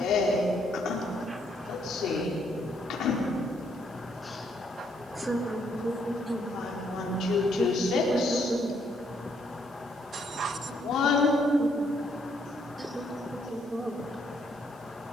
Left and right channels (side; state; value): both; normal; correlation 0.71